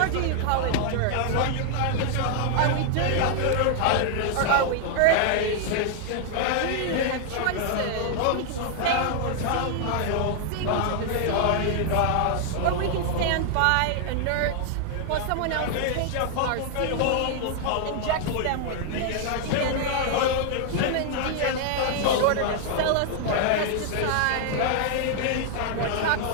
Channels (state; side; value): different; both; correlation 0.00